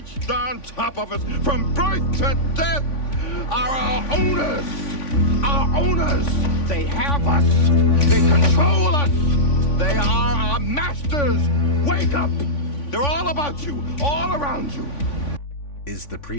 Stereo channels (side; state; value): right; late; 3.5 ms